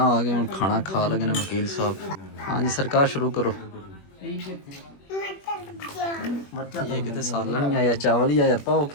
ਆ ਗਿਆ ਹੁਣ ਖਾਣਾ ਖਾ ਲਗੇ ਨੇ ਵਕੀਲ ਸਾਹਿਬ ਹਾਂਜੀ ਸਰਕਾਰ ਸ਼ੁਰੂ ਕਰੋ ਇਹ ਕਿਤੇ ਸਾਲਣ ਨਹੀਂ ਆਇਆ ਚਾਵਲ ਹੀ ਆਇਆ ਪਾਓ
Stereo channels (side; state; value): right; late; 21 ms